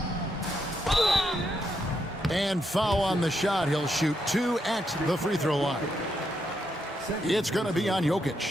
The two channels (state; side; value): normal; both; correlation 0.80